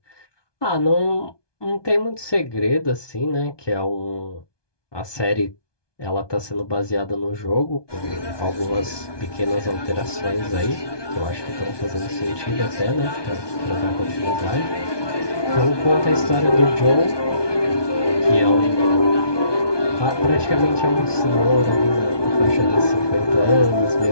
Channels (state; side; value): late; right; 1.2 ms